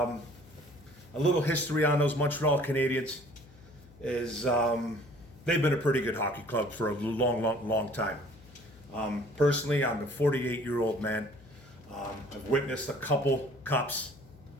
little history on those Montreal Canadiens is they've been a pretty good hockey club for a long time. Personally, I'm a 48-year-old man. I've witnessed a couple cups.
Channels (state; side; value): noise; left; hum, 23 dB below the sound